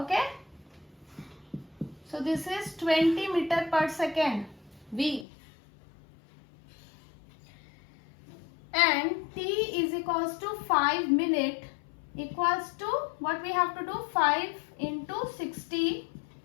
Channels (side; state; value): right; drops out; at 5.2 s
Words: So this is 20 meter per second, V. And T is equals to 5 minute equals to, what we have to do, 5 into 60,